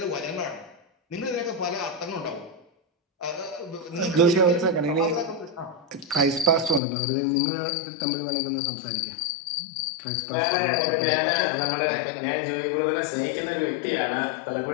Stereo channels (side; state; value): right; drops out; at 6.8 s